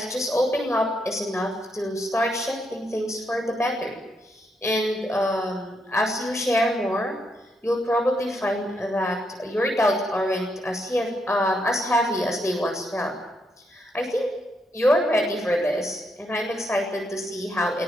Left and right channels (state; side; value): normal; both; correlation 0.78